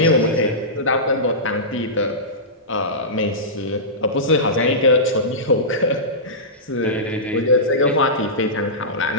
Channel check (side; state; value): both; normal; correlation -0.16